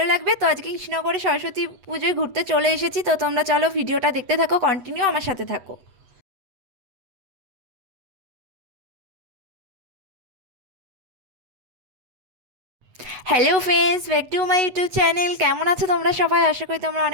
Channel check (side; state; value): left; late; 8.1 ms